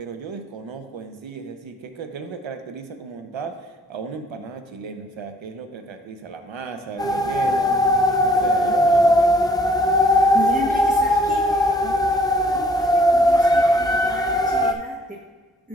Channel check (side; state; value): both; normal; correlation 0.60